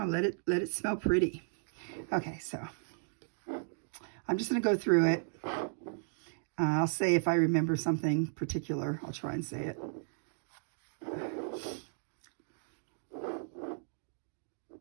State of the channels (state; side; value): silent; left; digital silence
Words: Let it smell pretty. Okay, so I'm just gonna go through it. I'll say if I remember something particular. I'll try and say it.